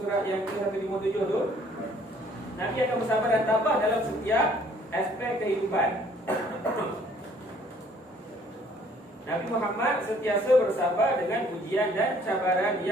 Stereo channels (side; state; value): both; normal; correlation 0.59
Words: surat yang ke-157 tu. Nabi akan bersabar dan tabah dalam setiap aspek kehidupan. Nabi Muhammad sentiasa bersabar dengan ujian dan cabaran